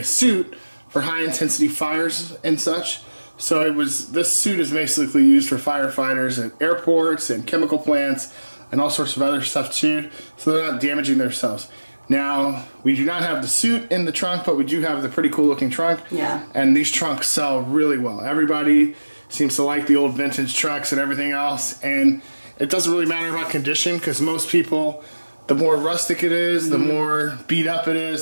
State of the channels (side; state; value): both; inverted; correlation -1.00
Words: suit for high intensity fires and such. So this suit is basically used for firefighters at airports and chemical plants and all sorts of other stuff too. So they're not damaging themselves. Now, we do not have the suit in the trunk, but we do have the pretty cool looking trunk. Yeah. And these trunks sell really well. Everybody seems to like the old vintage trucks and everything else. And it doesn't really matter about condition because most people, the more rustic it is, the more beat up it